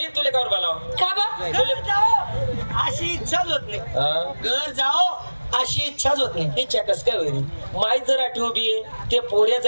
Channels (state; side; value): inverted; both; correlation -1.00